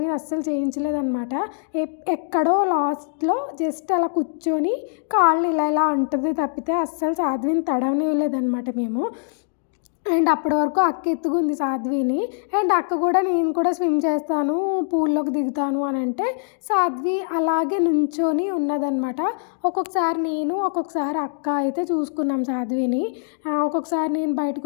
అస్సలు చేయించలేదన్నమాట. ఎక్కడో లాస్ట్లో జస్ట్ అలా కూర్చొని కాళ్ళు ఇలా అంటుంది తప్పితే అస్సలు సాధ్విని తడవనివ్వలేదన్నమాట మేము. అండ్ అప్పటి వరకు అక్క ఎత్తుకుంది సాధ్విని. అండ్ అక్క కూడా నేను కూడా స్విమ్ చేస్తాను, పూల్లోకి దిగుతాను అని అంటే సాధ్వి అలాగే నుంచొని ఉన్నదన్నమాట. ఒక్కొక్కసారి నేను ఒక్కొక్కసారి అక్క అయితే చూసుకున్నాం సాధ్విని. ఒక్కొక్కసారి నేను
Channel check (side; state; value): right; silent; digital silence